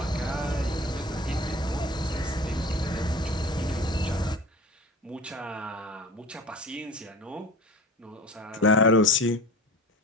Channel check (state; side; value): normal; both; correlation 0.37